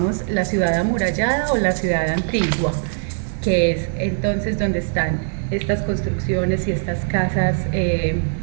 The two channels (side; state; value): left; silent; 65 dB below the other